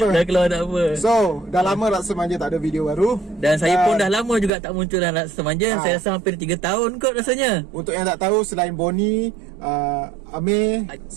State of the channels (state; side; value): drops out; left; at 4.5 s